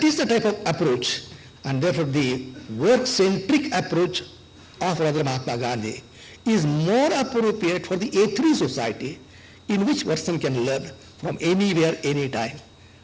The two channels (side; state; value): both; identical; correlation 1.00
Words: is the type of approach, and therefore the work-centric approach of Radha Mahatma Gandhi is more appropriate for the A3 society, in which person can learn from anywhere, anytime,